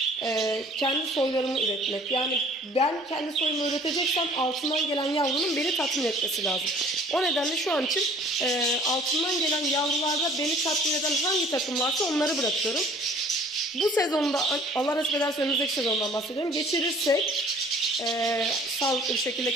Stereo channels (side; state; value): both; normal; correlation 0.52